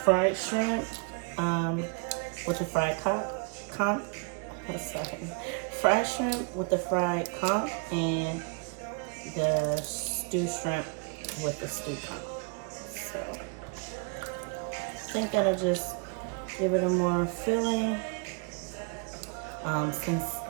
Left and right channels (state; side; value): quieter; left; 33.8 dB